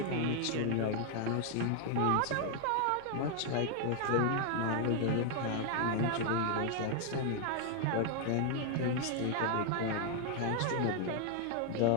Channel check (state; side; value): different; both; correlation 0.00